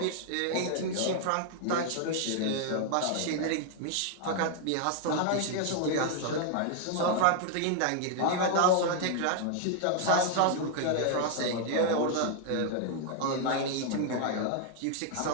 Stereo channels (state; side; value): different; both; correlation 0.00